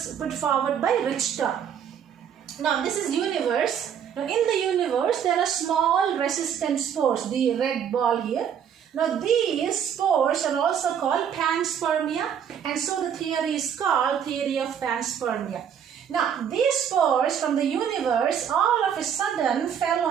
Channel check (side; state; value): left; quieter; 8.4 dB